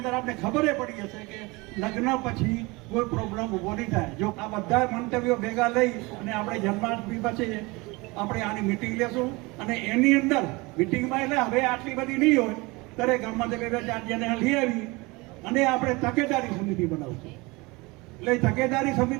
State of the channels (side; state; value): left; quieter; 24.5 dB